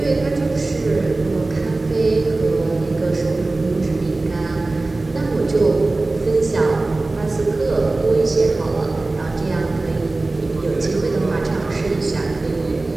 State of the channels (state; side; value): quieter; left; 3.2 dB